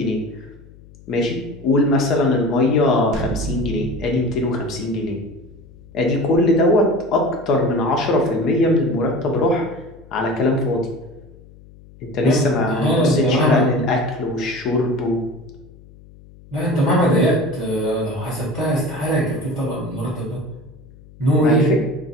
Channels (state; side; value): noise; left; hum, 23 dB below the sound